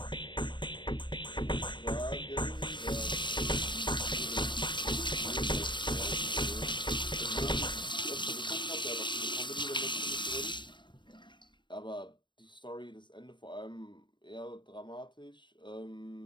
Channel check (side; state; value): right; late; 0.23 ms